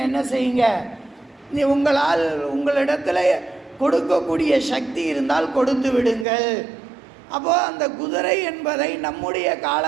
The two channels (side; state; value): left; drops out; at 6.2 s